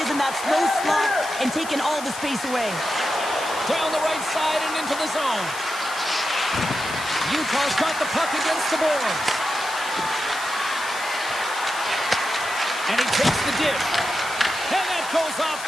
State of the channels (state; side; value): noise; left; hiss, 12 dB below the sound